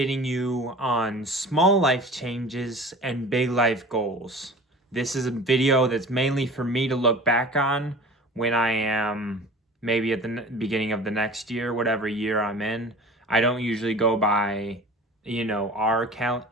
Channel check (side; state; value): both; normal; correlation 0.40